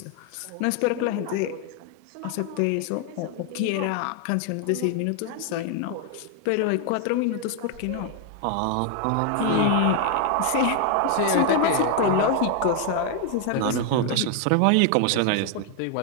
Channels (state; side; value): different; both; correlation 0.00